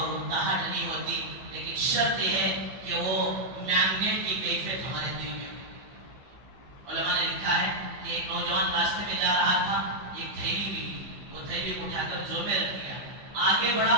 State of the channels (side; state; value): left; late; 15 ms